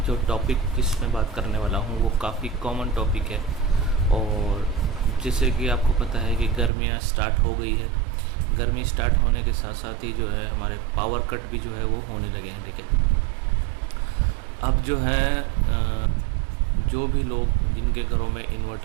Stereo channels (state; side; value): drops out; left; at 6.7 s